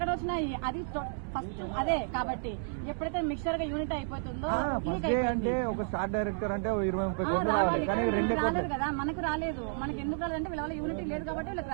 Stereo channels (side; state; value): left; silent; digital silence